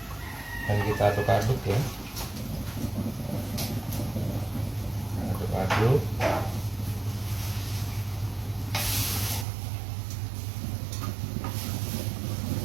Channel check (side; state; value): left; drops out; at 9.5 s